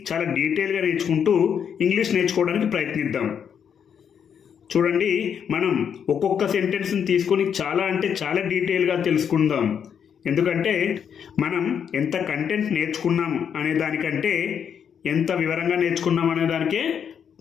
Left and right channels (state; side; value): quieter; right; 7.8 dB